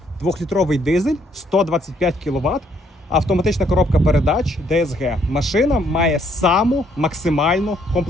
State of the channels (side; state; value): both; normal; correlation 0.68